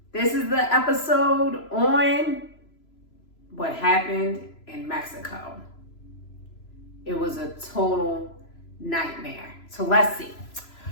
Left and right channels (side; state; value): right; late; 3.0 ms